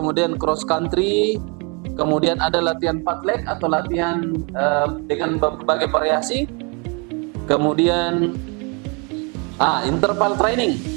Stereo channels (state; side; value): quieter; left; 33.0 dB